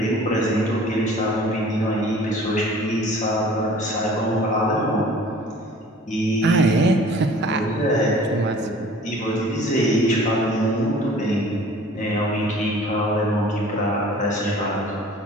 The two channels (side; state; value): both; normal; correlation 0.48